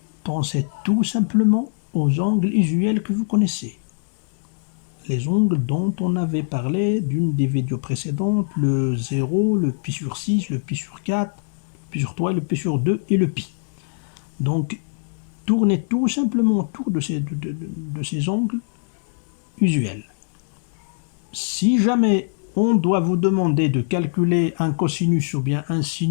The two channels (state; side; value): silent; right; digital silence